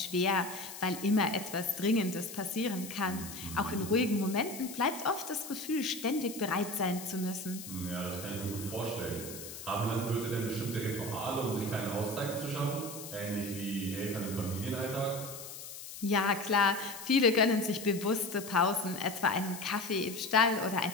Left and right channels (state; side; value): noise; left; hiss, 11 dB below the sound